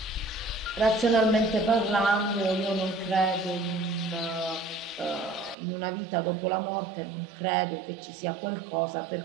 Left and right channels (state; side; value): drops out; left; at 5.6 s